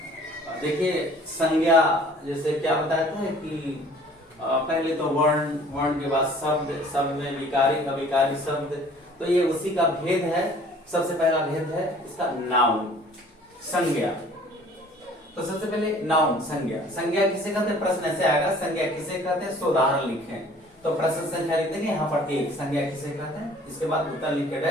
देखिए संज्ञा जैसे क्या बताता है कि पहले तो वर्ण, वर्ण के बाद शब्द, शब्द में विकारी, अविकारी शब्द, तो ये उसी का भेद है। सबसे पहला भेद है इसका नाउन, संज्ञा। तो सबसे पहले नाउन, संज्ञा। संज्ञा किसे कहते हैं, प्रश्न ऐसे आएगा, संज्ञा किसे कहते हैं, उदाहरण लिखें। तो प्रश्न संख्या लिख देंगे यहाँ पर एक, संज्ञा किसे कहते हैं, इसके बाद उत्तर लिख के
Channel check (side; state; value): both; normal; correlation 0.52